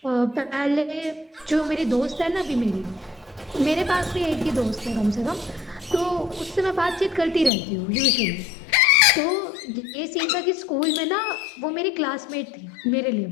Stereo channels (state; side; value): drops out; right; at 7.5 s